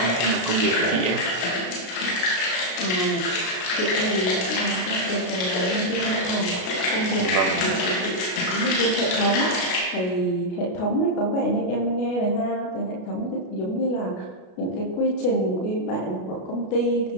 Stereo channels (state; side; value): late; right; 33 ms